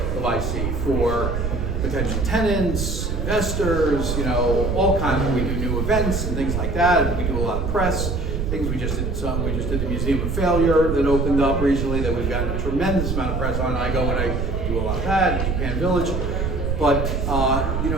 of IC for potential tenants, investors, all kinds of, we do new events and things like that, and we do a lot of press. Things we just did the Museum of Failure that opened up recently that we've gotten a tremendous amount of press on. I go and I do a lot of that in Japan Village. But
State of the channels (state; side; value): noise; right; rumble, 1 dB below the sound